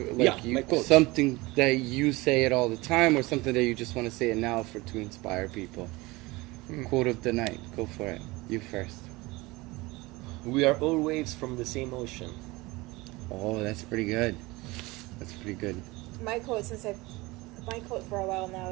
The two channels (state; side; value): quieter; left; 22.1 dB